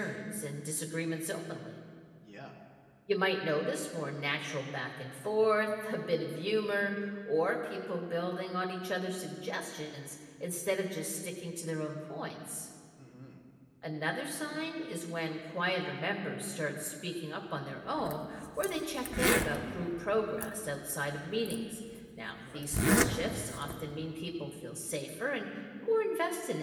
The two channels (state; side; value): identical; both; correlation 1.00